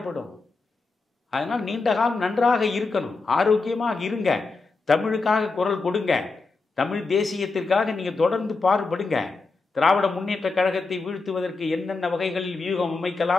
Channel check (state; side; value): quieter; right; 3.9 dB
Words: அதனால் நீண்ட காலம் நன்றாக இருக்கணும், ஆரோக்கியமாக இருங்க, தமிழுக்காக குரல் கொடுங்க, தமிழ் தேசியத்திற்காக நீங்கள் தொடர்ந்து பாடுபடுங்க. திராவிட முன்னேற்ற கழகத்தை வீழ்த்துவதற்கு என்னென்ன வகைகளில் வியூகம்